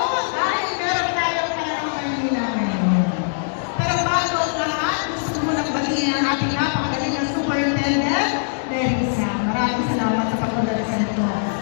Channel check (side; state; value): right; silent; digital silence